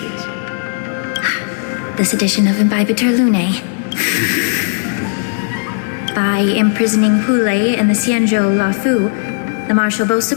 This edition of Imbibitor Lune. By imprisoning Hule and the Xianzhou Lafu, the Marshal both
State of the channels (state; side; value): silent; right; 63 dB below the other